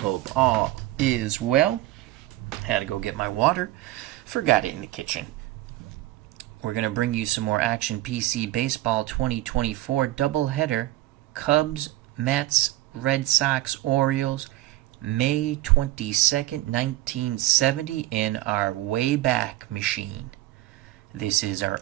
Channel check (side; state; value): left; quieter; 16.1 dB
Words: all is well. Had to go get my water. Forgot it in the kitchen. We're going to bring you some more Action PC Baseball 2024 doubleheader. Cubs, Mets, Red Sox, Orioles, May 22nd, 1970 in our Wayback Machine. This is our